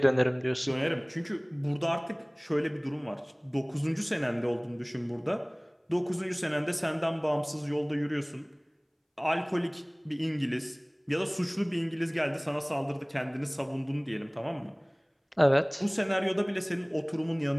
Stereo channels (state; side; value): identical; both; correlation 1.00